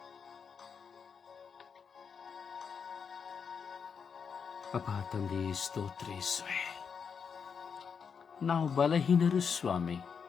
ಅಪ್ಪ ತಂದೆ, ಸ್ತೋತ್ರ ಯೇಸುವೇ. ನಾವು ಬಲಹೀನರು ಸ್ವಾಮಿ.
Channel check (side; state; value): right; quieter; 6.4 dB